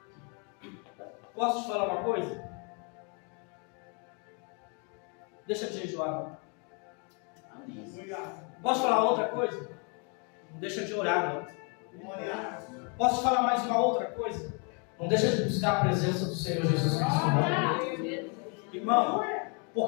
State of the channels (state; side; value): quieter; right; 36.3 dB